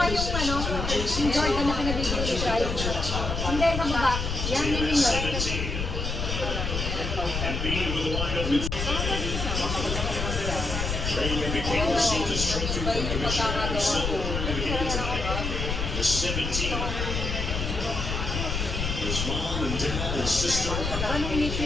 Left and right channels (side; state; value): left; noise; rumble, 3 dB below the sound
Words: yung ano, yung Jordan na pinabibili ni Bryce. Hindi, sa baba. Yan, yan yun. 17. Embiid with a wide open. Trey became received his trophy from Commissioner Silver in the game tonight. The 17. His mom and dad and sister. Paano